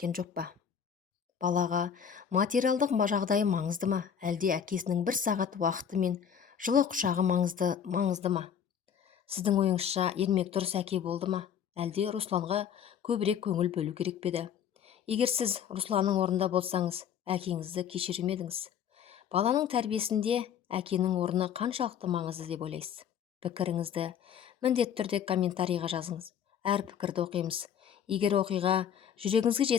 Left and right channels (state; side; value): quieter; right; 8.3 dB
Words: жоқ па? Балаға материалдық жағдайы маңызды ма, әлде әкесінің бір сағат уақыты мен жылы құшағы маңызды ма? Сіздің ойыңызша Ермек дұрыс әке болды ма, әлде Русланға көбірек көңіл бөлу керек пе еді? Егер сіз Русланның орнында болсаңыз, әкеңізді кешірер ме едіңіз? Баланың тәрбиесінде әкенің орны қаншалықты маңызды деп ойлайсыз? Пікіріңізді міндетті түрде комментарийға жазыңыз. Әр пікірді оқимыз. Егер оқиға жүрегіңізге